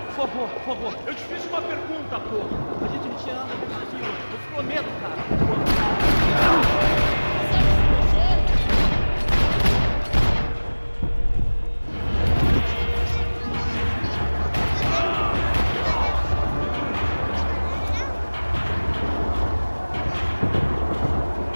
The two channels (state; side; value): inverted; both; correlation -1.00